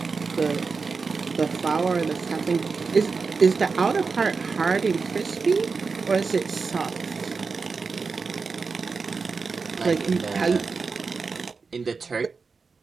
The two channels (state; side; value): quieter; left; 4.7 dB